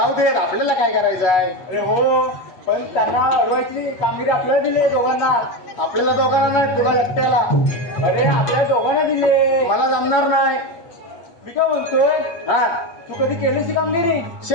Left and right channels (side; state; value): right; late; 8.5 ms